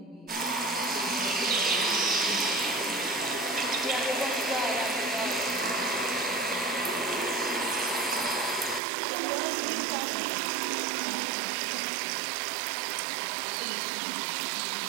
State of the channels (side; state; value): left; drops out; at 8.8 s